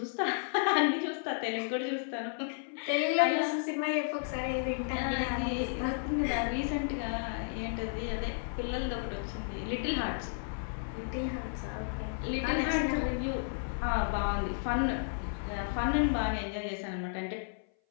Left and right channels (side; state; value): right; silent; 56 dB below the other